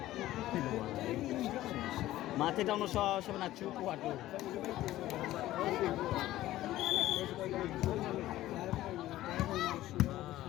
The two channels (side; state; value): right; quieter; 15.1 dB